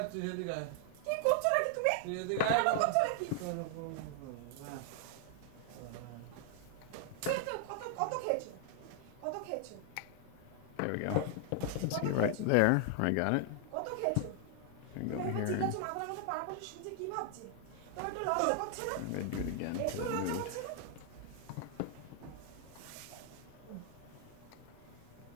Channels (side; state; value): both; different; correlation 0.00